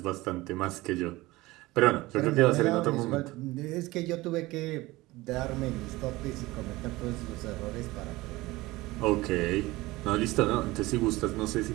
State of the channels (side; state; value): left; quieter; 19.8 dB